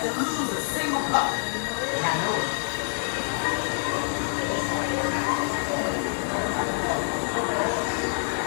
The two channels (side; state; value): right; silent; 61 dB below the other